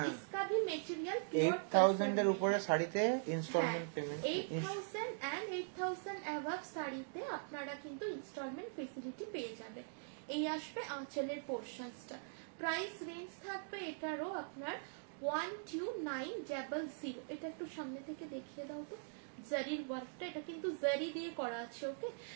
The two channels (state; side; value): silent; left; digital silence